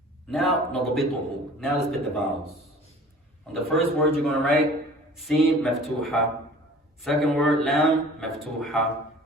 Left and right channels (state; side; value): normal; both; correlation 0.46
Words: Now, نضبطه. Now let's put the vowels. On the first word you're going to write Sin, Maftuha. Second word, Lam, Maftuha.